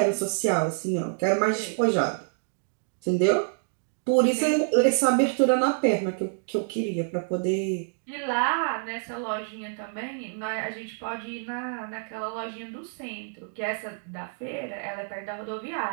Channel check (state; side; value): silent; left; digital silence